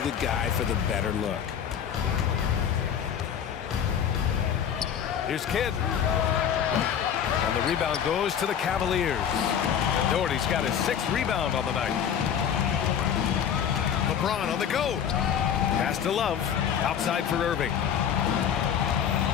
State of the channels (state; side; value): quieter; right; 8.6 dB